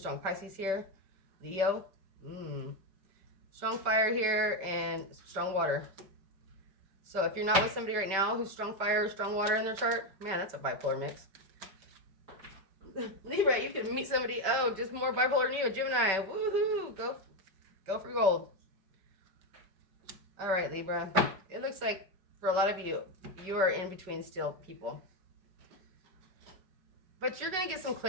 Pisces here. Leo. Strong fire here and strong water. So if you're not with somebody right now who's strong fire or strong water in their chart, man, that's a bipolar mix. Libra, you can meet somebody, just more bipolar than you, Gemini. Woohoo! Go for gold. All right, Libra. It looks like for a lot of you, you are in between still people. But you're going to get some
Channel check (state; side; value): late; left; 5.2 ms